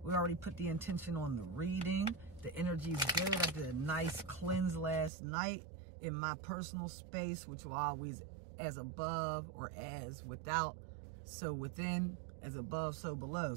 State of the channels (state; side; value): drops out; left; at 5.1 s